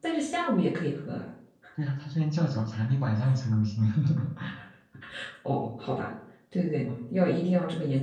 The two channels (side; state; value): both; identical; correlation 1.00